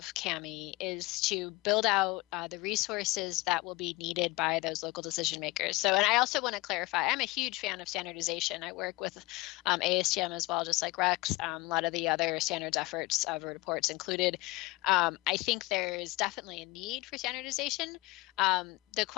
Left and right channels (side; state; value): right; quieter; 22.2 dB